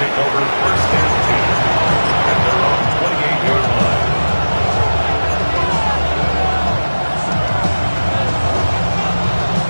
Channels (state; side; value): inverted; both; correlation -1.00